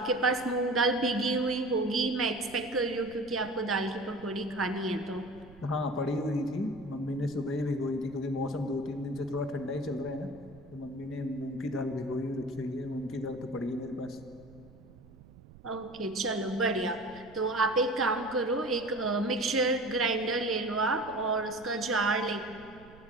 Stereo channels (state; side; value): noise; right; rumble, 21 dB below the sound